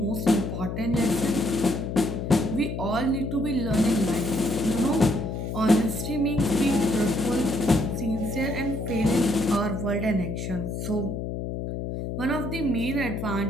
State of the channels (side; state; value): left; noise; hum, 4 dB below the sound